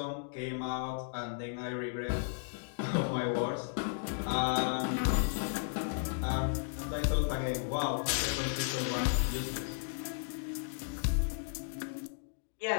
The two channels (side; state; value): right; silent; digital silence